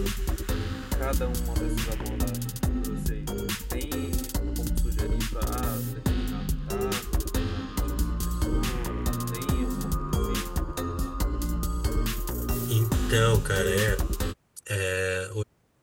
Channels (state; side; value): identical; both; correlation 1.00